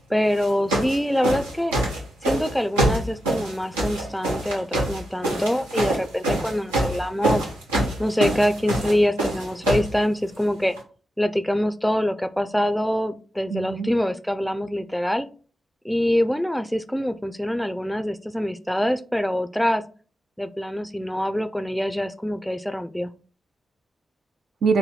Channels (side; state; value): both; normal; correlation 0.90